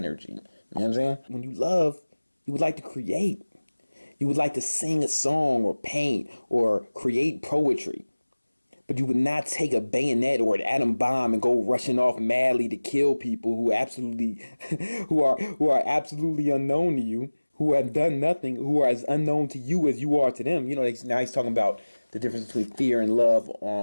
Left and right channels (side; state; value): both; inverted; correlation -1.00